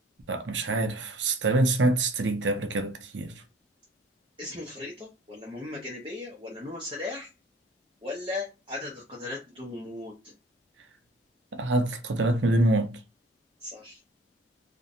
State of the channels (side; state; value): both; normal; correlation 0.52